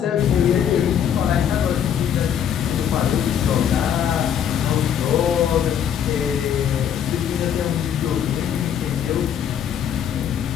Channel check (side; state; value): right; quieter; 8.9 dB